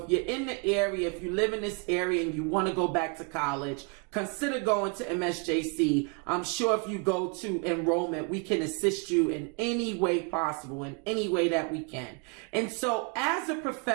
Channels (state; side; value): quieter; left; 35.2 dB